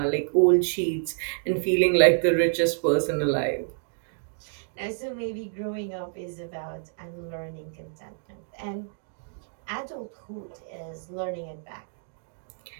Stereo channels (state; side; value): silent; left; digital silence